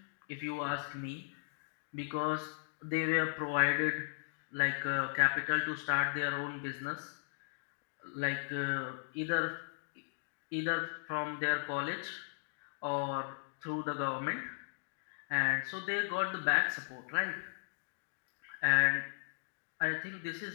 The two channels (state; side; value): silent; right; digital silence